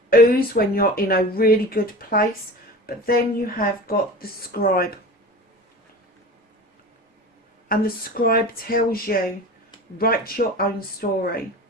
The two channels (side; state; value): both; normal; correlation 0.34